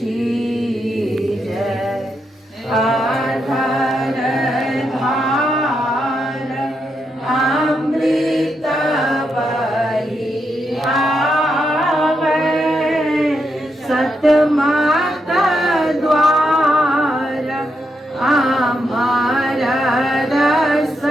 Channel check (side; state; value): both; normal; correlation 0.82